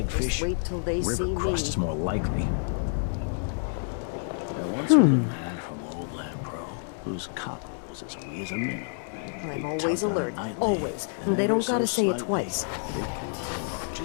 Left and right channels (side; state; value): right; silent; digital silence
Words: wait till they River see crust me. is more likely. There once was a man from Old Land Pro whose cock was as wee as a minnow. I'm always alert. Always. And they don't gotta say it twice.